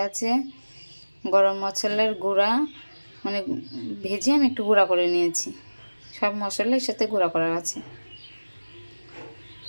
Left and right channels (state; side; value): inverted; both; correlation -1.00